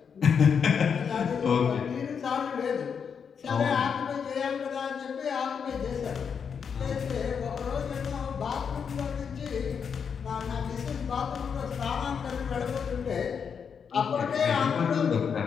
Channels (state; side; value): quieter; right; 6.7 dB